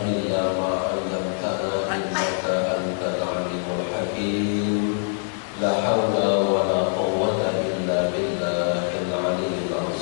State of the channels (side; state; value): right; silent; 63 dB below the other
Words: illa ma 'allamtana innaka antal alimul hakim. La haula wa la quwwata illa billahil aliyyil